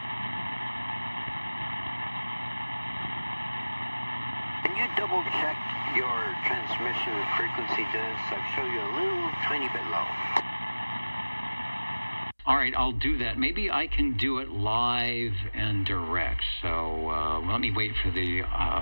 Can you double check your transmission frequency, Dennis? I've shown you a little tiny bit low. All right, I'll do that. Maybe I can do it live and direct. So let me wait for the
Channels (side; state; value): both; inverted; correlation -1.00